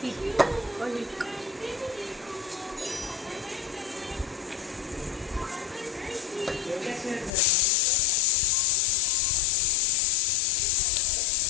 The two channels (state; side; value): drops out; right; at 7.3 s